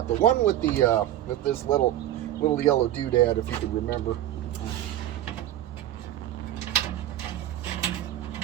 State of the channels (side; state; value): left; quieter; 13.0 dB